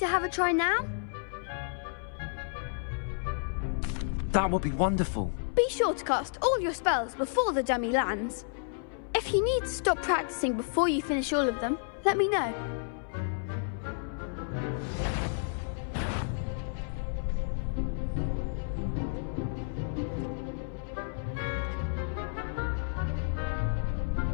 have a try now? That would be wonderful. Be sure to cast all your spells before the dummy lands. If you need to stop practicing before you finish all of them, let me know.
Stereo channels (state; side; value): silent; right; 57 dB below the other